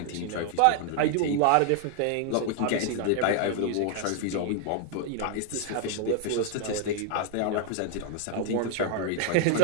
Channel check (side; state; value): both; different; correlation 0.00